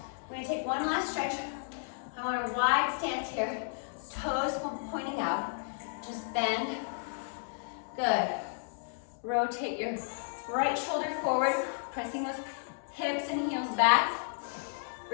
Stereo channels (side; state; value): right; silent; digital silence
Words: we're gonna take one last stretch. I want a wide stance here, toes pointing out. Just bend. Good. Rotate your right shoulder forward, pressing those hips and heels back.